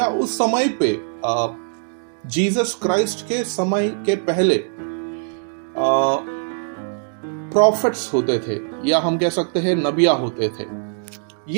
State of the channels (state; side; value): silent; left; digital silence